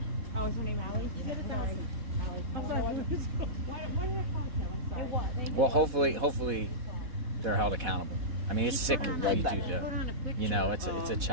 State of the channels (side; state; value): left; late; 4.1 ms